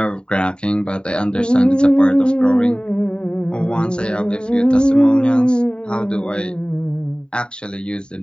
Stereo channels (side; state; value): right; late; 0.049 ms